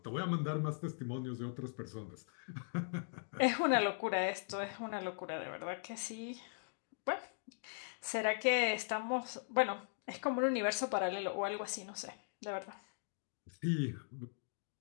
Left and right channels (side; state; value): right; silent; digital silence